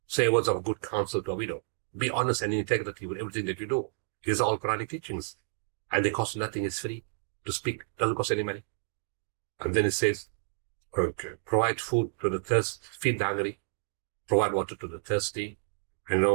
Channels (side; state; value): left; silent; digital silence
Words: Say words of good counsel to a widow. Be honest and in integrity with everything that you do. These are all Quranic teachings. And they cost nothing. It's free to speak. Doesn't cost any money. And then it says, provide food to the thirsty, feed the hungry, provide water to the thirsty, and